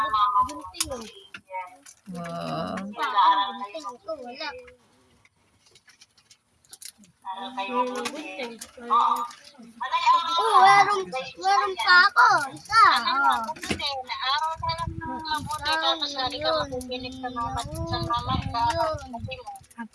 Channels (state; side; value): identical; both; correlation 1.00